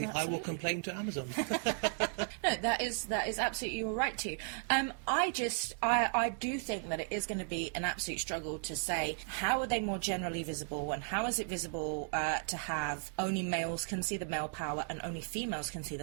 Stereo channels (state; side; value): silent; left; 54 dB below the other